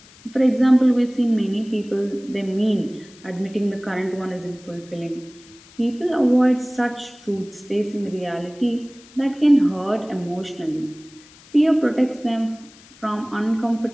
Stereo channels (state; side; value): noise; left; hiss, 24 dB below the sound